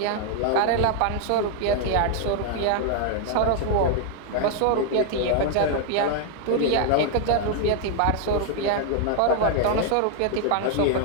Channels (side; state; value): both; different; correlation 0.00